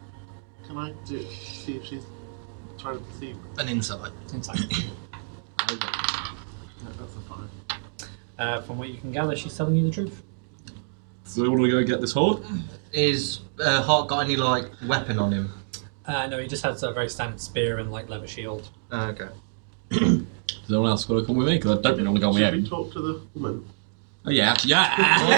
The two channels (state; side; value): silent; left; digital silence